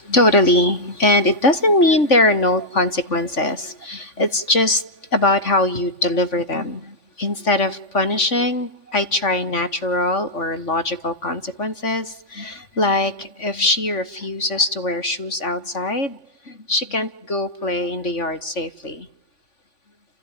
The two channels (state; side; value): late; right; 3.5 ms